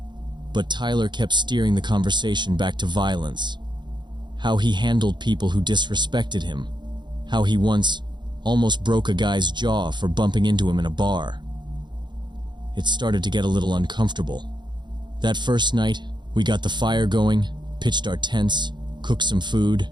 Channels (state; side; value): late; left; 0.22 ms